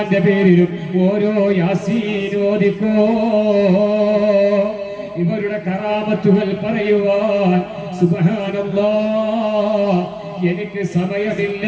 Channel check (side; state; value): both; identical; correlation 1.00